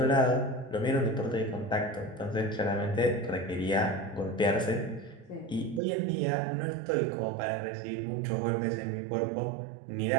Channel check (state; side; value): drops out; left; at 5.8 s